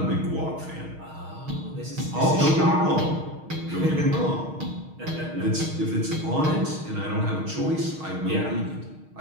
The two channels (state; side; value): late; left; 6.4 ms